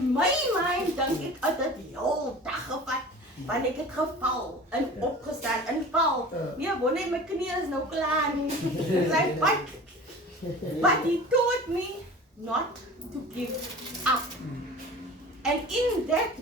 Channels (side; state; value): both; normal; correlation 0.39